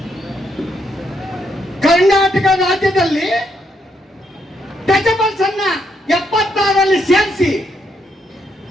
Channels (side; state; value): both; normal; correlation 0.76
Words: ಕರ್ನಾಟಕ ರಾಜ್ಯದಲ್ಲಿ ಟಚಬಲ್ಸ್ ಅನ್ನ 76ರಲ್ಲಿ ಸೇರಿಸಿ